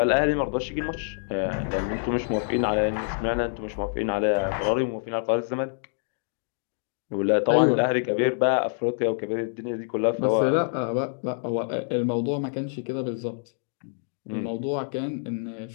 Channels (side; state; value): right; silent; digital silence